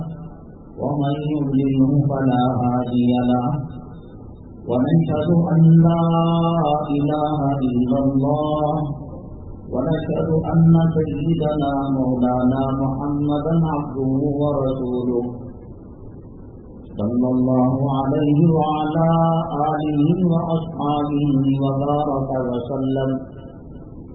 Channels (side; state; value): both; identical; correlation 1.00